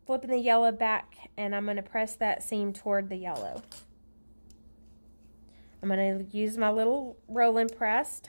flipping the yellow back and I'm going to press that seam toward the yellow. I'm going to use my little rolling press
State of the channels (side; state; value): both; inverted; correlation -1.00